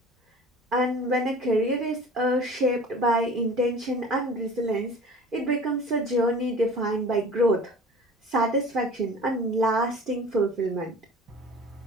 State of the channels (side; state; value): both; normal; correlation 0.42